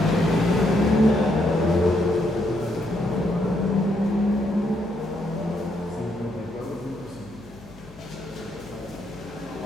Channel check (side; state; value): left; noise; hum, 22 dB below the sound